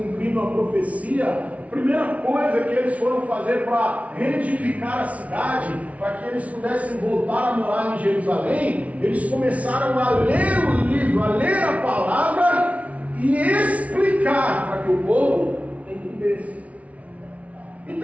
a profecia. A primeira coisa que eles foram fazer para reedificar a cidade, para que eles pudessem voltar a morar em Jerusalém, eles começaram a ler o livro, a ler a palavra e explicar para que o povo entendesse.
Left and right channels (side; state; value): left; late; 0.067 ms